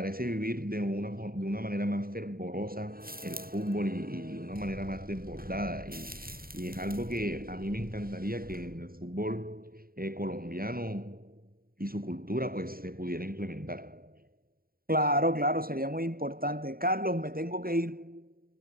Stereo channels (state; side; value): late; left; 0.43 ms